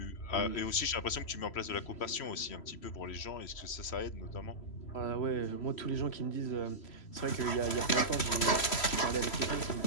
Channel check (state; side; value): late; right; 3.1 ms